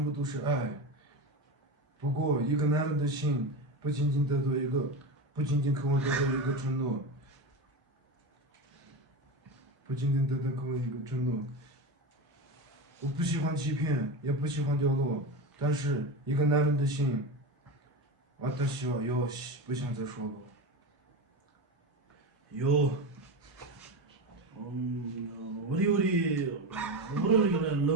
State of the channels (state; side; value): normal; both; correlation 0.21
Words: 部都是爱。不过，一个男人的心不仅仅渴望得到一个承诺，不仅仅得到渴望一个承诺。我不喜欢欺骗，也不喜欢掉落，但是一个男人的心，私はよし，不想再说了。요, 우리 이거는